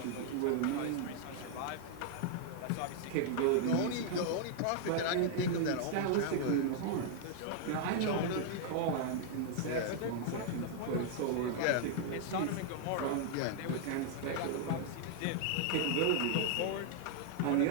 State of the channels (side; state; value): both; different; correlation 0.00